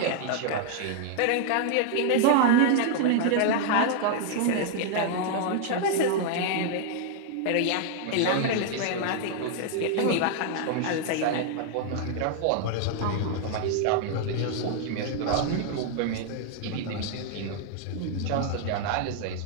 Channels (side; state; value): both; different; correlation 0.00